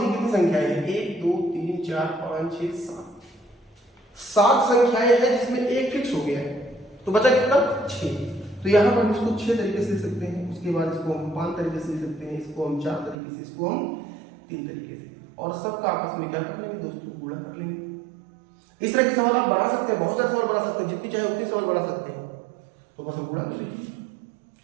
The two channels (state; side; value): drops out; left; at 13.2 s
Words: कितनी संख्याएं हैं, 1 2 3 4 5 6 7 संख्याएं हैं जिसमें एक फिक्स हो गया है। तो बचा कितना, 6। तो यहाँ पर हम इसको 6 तरीके से लिख सकते हैं, उसके बाद इसको हम 5 तरीके से लिख सकते हैं, इसको हम 4 तरीके से, इसको हम 3 तरीके से, और सबका आपस में क्या कर लेंगे दोस्तों, गुणा कर लेंगे। इस तरह के सवाल आप बना सकते हैं, बहुत सारे सवाल बना सकते हैं, जितनी चाहे उतनी सवाल बना सकते हैं। तो बस हम गुणा कर लीजिए,